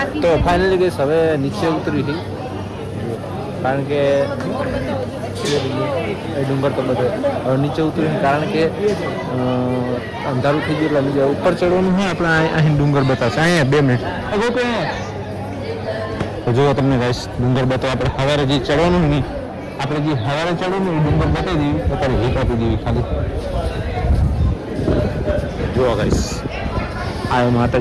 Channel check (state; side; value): identical; both; correlation 1.00